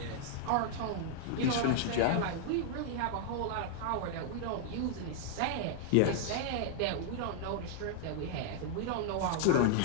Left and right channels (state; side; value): different; both; correlation -0.01